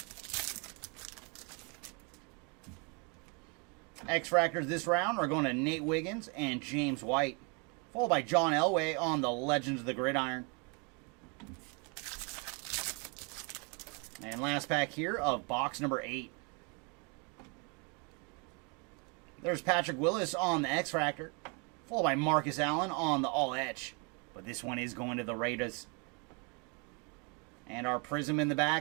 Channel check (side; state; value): left; quieter; 33.5 dB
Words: X-Fractors this round are going to Nate Wiggins and James White, followed by John Elway on the Legends of the Gridiron. And last pack here of box number 8. There's Patrick Willis on the X-Fractor, followed by Marcus Allen on the All-Etch. But this one is going to the Raiders. And our Prism in the